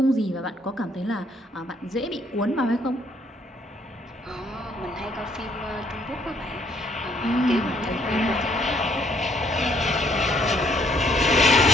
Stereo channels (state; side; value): normal; both; correlation 0.67